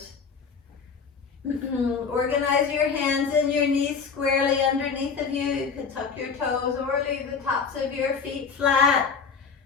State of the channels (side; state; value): right; quieter; 5.7 dB